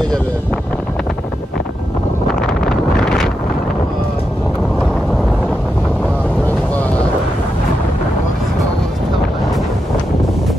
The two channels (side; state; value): both; normal; correlation 0.86